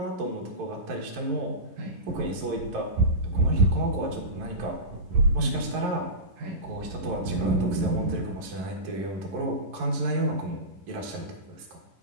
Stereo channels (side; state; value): left; late; 11 ms